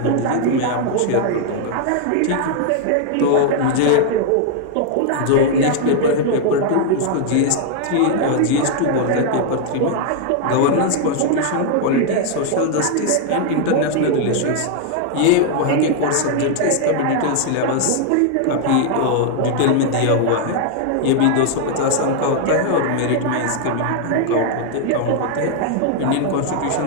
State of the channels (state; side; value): different; both; correlation 0.00